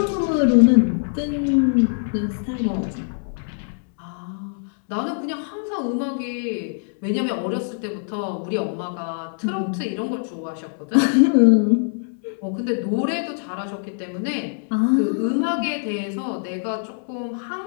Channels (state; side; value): silent; right; 63 dB below the other